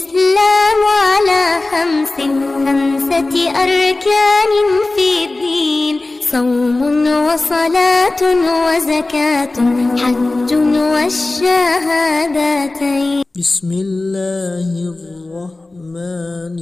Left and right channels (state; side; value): quieter; right; 3.0 dB